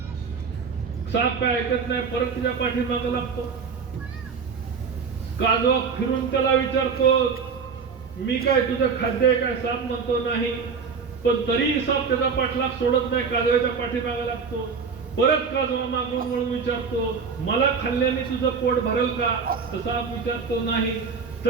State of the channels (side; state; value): left; quieter; 5.6 dB